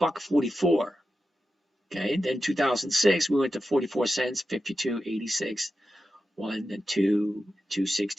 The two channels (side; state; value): both; normal; correlation 0.91